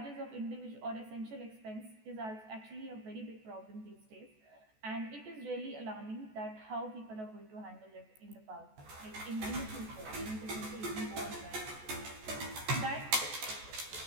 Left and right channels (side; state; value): left; late; 14 ms